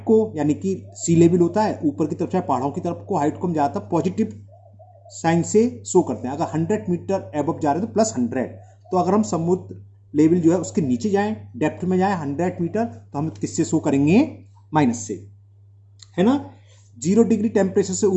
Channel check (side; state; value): both; identical; correlation 1.00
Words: यानी कि सी लेवल होता है ऊपर की तरफ चाहे पहाड़ों की तरफ को, हाइट को हम ज़्यादातर पॉजिटिव साइन से शो करते हैं. अगर 100 मीटर एबव जा रहे हैं तो +100. तो अगर हम समुद्र लेवल जो है उसके नीचे जाएं, डेप्थ में जाएं 100 मीटर, तो हम किससे शो करेंगे? माइनस से, है ना. 0 डिग्री टेम्परेचर से